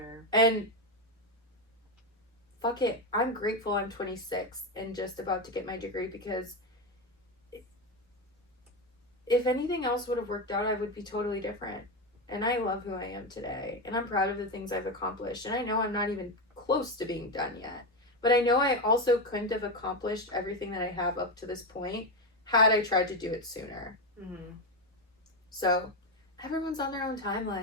And fuck it, I'm grateful I'm 26 and just about to get my degree, because if anything else would have worked out, I would be totally different. And I love who I am today. And I'm proud of the things I've accomplished. And I know I'm not even close to being done yet. But I know I also couldn't have accomplished everything that I have up to this point had I tried to do it sooner. Mm-hmm. So everyone's on their own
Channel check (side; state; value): both; normal; correlation 0.13